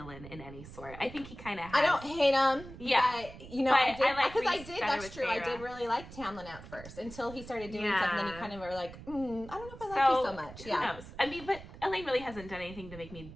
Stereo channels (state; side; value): noise; right; rumble, 15 dB below the sound